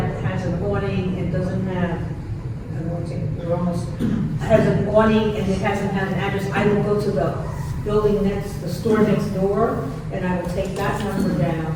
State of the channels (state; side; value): identical; both; correlation 1.00